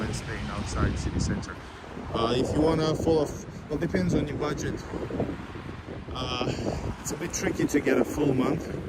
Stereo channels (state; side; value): identical; both; correlation 1.00